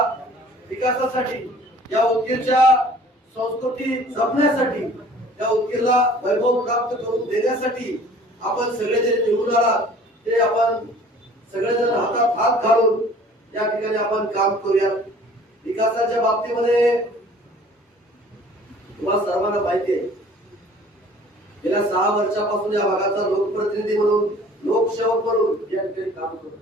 विकासासाठी, या उदगीरच्या संस्कृती जपण्यासाठी, या उदगीरला वैभव प्राप्त करून देण्यासाठी आपण सगळे जे निवडून आलात ते आपण सगळेजण हातात हात घालून या ठिकाणी आपण काम करूया. विकासाच्या बाबतीमध्ये तुम्हाला सर्वांना माहिती आहे, गेल्या 6 वर्षापासून या भागाचा लोकप्रतिनिधी म्हणून, लोकसेवक म्हणून या ठिकाणी काम करतो.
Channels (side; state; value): both; normal; correlation 0.50